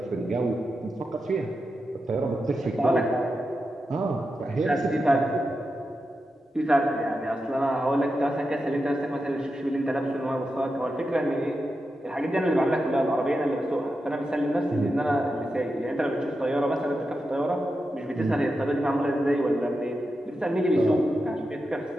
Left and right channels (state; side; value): normal; both; correlation 0.89